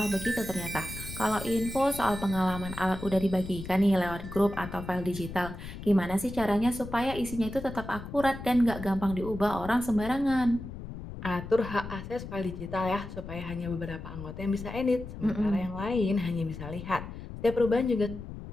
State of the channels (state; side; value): noise; left; rumble, 11 dB below the sound